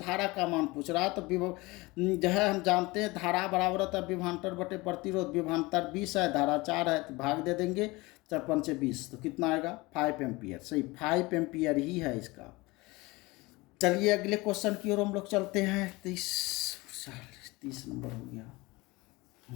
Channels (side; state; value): right; quieter; 22.8 dB